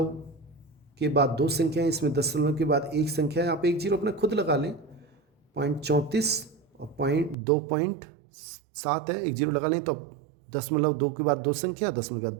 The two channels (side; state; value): left; drops out; at 7.4 s